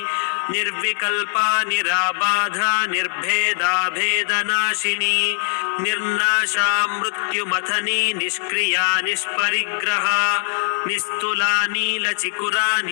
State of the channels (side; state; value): right; silent; 62 dB below the other